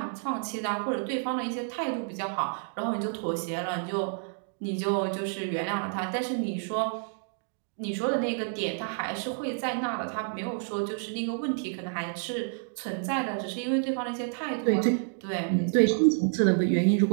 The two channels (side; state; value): left; silent; 58 dB below the other